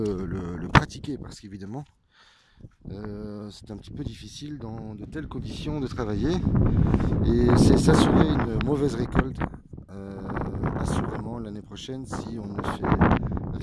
pratiquer. Parce qu'évidemment, c'est un petit peu difficile dans de telles conditions de travailler. Et c'est s'assurer une mauvaise récolte assurément l'année prochaine si on ne fait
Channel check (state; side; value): identical; both; correlation 1.00